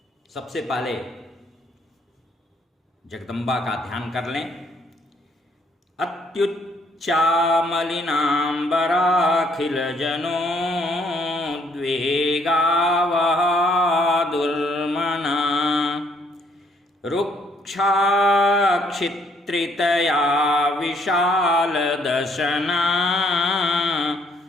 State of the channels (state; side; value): normal; both; correlation 0.67